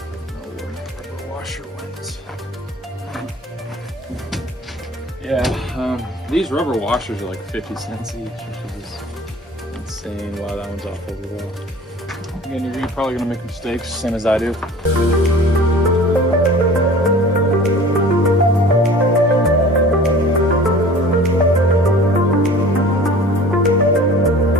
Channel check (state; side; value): normal; both; correlation 0.44